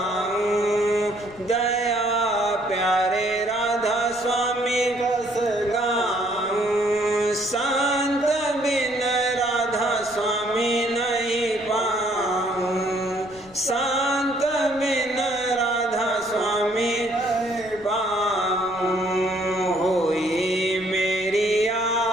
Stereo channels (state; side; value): noise; left; rumble, 24 dB below the sound